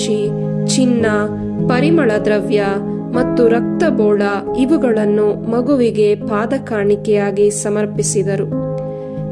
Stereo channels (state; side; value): identical; both; correlation 1.00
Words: ಚಿನ್ನ, ಪರಿಮಳ ದ್ರವ್ಯ ಮತ್ತು ರಕ್ತಬೋಳ ಇವುಗಳನ್ನು ಮಗುವಿಗೆ ಪಾದ ಕಾಣಿಕೆಯಾಗಿ ಸಮರ್ಪಿಸಿದರು.